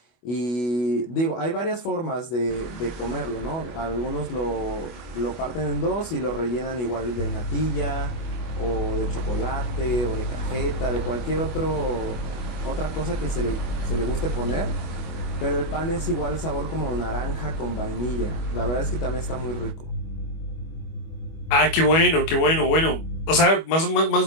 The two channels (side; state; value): right; late; 25 ms